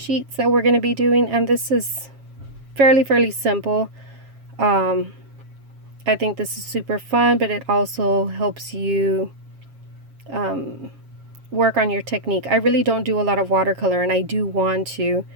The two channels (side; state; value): left; late; 7.3 ms